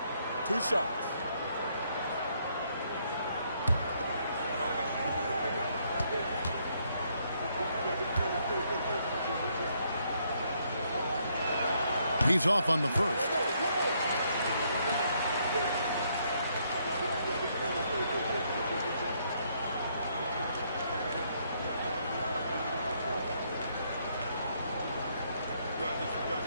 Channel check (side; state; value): both; inverted; correlation -0.72